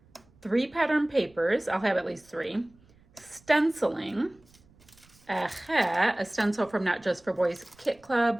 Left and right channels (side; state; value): right; noise; rumble, 30 dB below the sound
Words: 3 pattern papers, I'll have at least 3, stenciling, a stencil from Not Just for Boys Kit